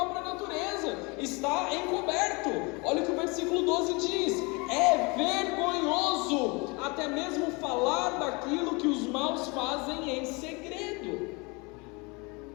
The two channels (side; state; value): right; quieter; 28.4 dB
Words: natureza, está encoberto. Olha o que o versículo 12 diz: é vergonhoso até mesmo falar daquilo que os maus fazem em segredo.